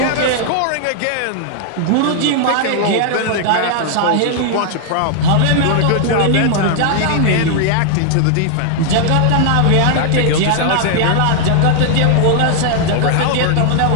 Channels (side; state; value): both; different; correlation 0.00